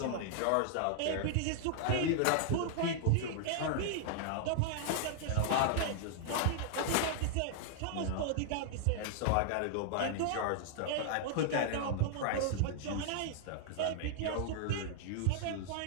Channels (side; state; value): both; different; correlation -0.01